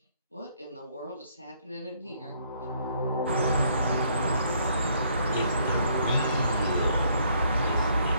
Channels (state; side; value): inverted; both; correlation -0.67